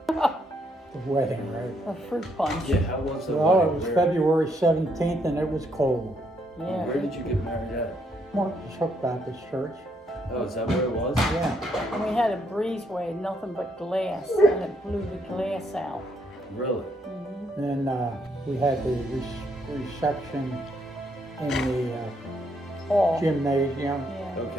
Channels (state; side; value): normal; both; correlation 0.74